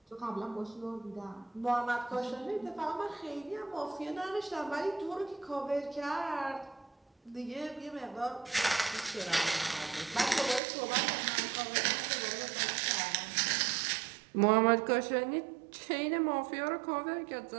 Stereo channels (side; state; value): left; drops out; at 10.6 s